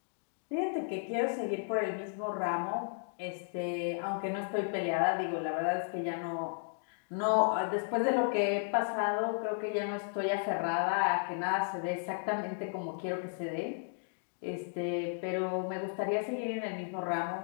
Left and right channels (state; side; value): silent; right; digital silence